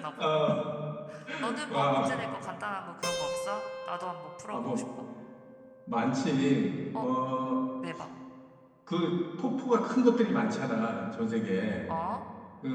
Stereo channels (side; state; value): both; identical; correlation 1.00